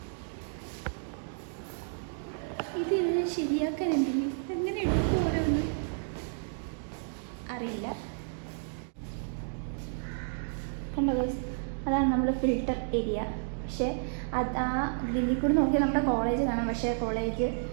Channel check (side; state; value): left; silent; digital silence